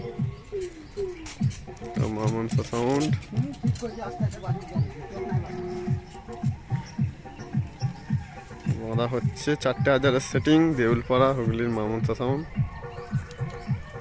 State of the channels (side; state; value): both; identical; correlation 1.00